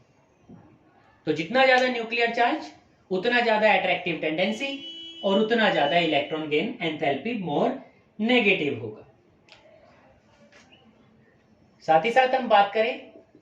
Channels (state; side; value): identical; both; correlation 1.00